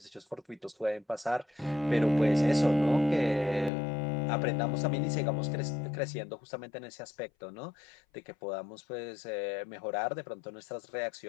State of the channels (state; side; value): drops out; right; at 3.7 s